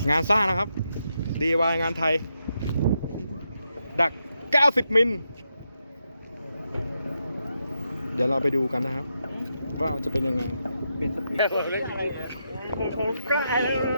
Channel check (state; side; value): inverted; both; correlation -0.84